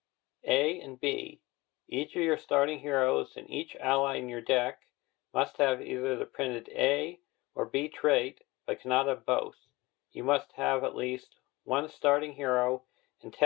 A and B. Each of your starting heroes and each ally in your deck must have either the printed A or B trait, but cannot have both. You must have at least 1 starting hero and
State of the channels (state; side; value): quieter; right; 21.6 dB